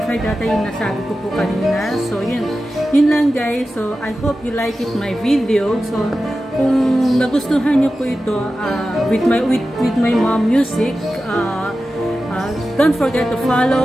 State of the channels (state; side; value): normal; both; correlation 0.93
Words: data yung nasabi ko po kanina. So yun. Yun lang guys. So I hope you like it my video. So kung nagustuhan nyo po ito with my mom music, Don't forget to